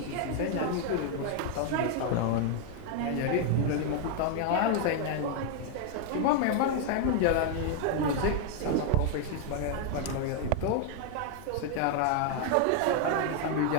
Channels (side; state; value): both; different; correlation 0.00